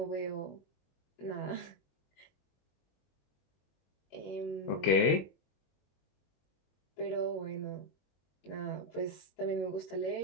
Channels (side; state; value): right; late; 21 ms